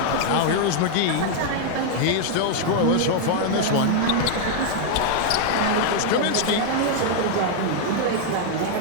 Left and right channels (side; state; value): both; different; correlation 0.00